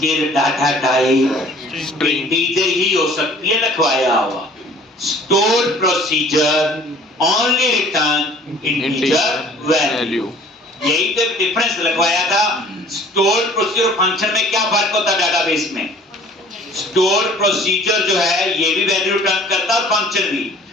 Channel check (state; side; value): normal; both; correlation 0.51